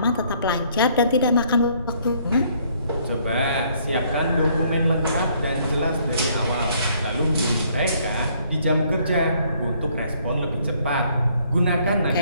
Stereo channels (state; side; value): inverted; both; correlation -0.65